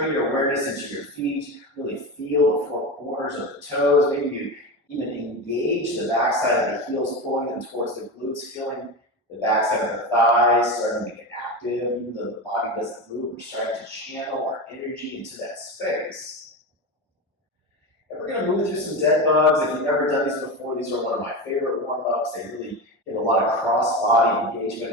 your awareness into your feet. Really feel the 4 corners of the toes. Maybe you even engage the backside of the heels, pulling them towards the glutes, feeling the backside of the thighs starting to get active. Even though the body doesn't move, we're starting to channel our energy into that space. And we're going to move through some dead bugs. If you've never done these before, these are one of my favorite warm-ups. They really get a lot of cross-body engagement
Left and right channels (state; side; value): normal; both; correlation 0.21